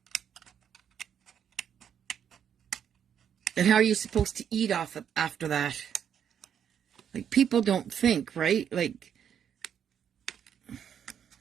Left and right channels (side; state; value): left; quieter; 8.6 dB